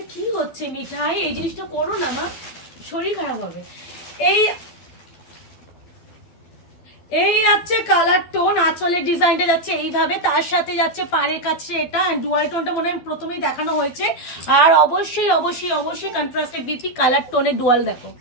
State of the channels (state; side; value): late; right; 12 ms